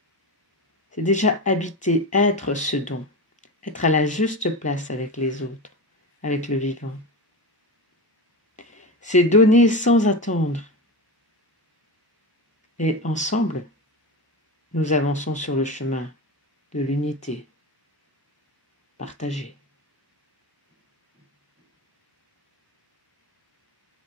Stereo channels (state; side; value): normal; both; correlation 0.22